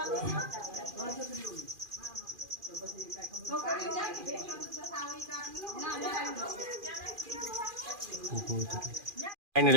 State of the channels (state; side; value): late; left; 2.4 ms